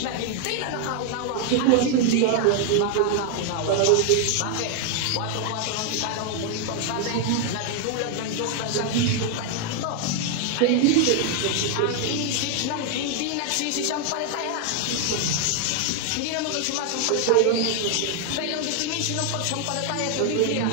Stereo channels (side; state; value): both; different; correlation 0.00